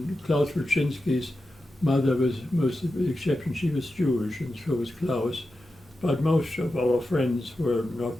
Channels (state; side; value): normal; both; correlation 0.91